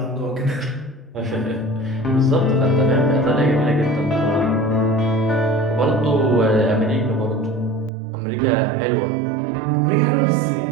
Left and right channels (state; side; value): drops out; left; at 7.9 s